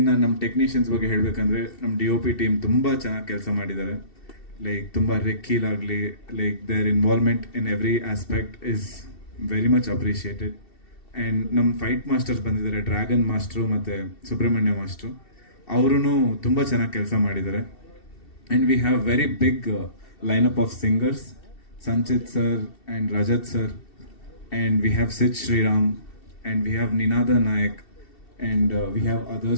ನಮ್ಮ ಟೆಕ್ನಿಷಿಯನ್ಸ್ ಬಗ್ಗೆ ಹೇಳಬೇಕಂದ್ರೆ ನಮ್ಮ DOP ಟೀಮ್ ತುಂಬ ಚೆನ್ನಾಗಿ ಕೆಲಸ ಮಾಡಿದ್ದಾರೆ. ಲೈಕ್ ತುಂಬ ರೆಕ್ಕೀಲ್ ಆಗಲಿ, like their involvement in every aspect is very much appreciated. And ನಮ್ಮ ಫೈಟ್ ಮಾಸ್ಟರ್ಸ್ ಬಂದಿದ್ದಾರೆ, ಡ್ರ್ಯಾಗನ್ ಮಾಸ್ಟ್ರು ಮತ್ತು ಸುಬ್ರಹ್ಮಣ್ಯ ಮಾಸ್ಟ್ರು. ಅವರೂ ತುಂಬ ಚೆನ್ನಾಗಿ ಕೆಲಸ ಮಾಡಿದ್ದಾರೆ. And we have very big lineup of singers, Sanchit sir and Rajat sir, and we have Sid Sriram, and we have Ninada Nayak, and we have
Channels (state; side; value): late; right; 2.7 ms